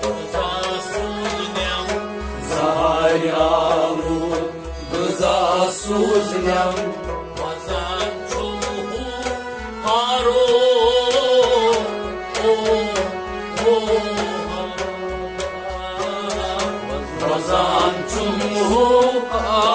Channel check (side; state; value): both; identical; correlation 1.00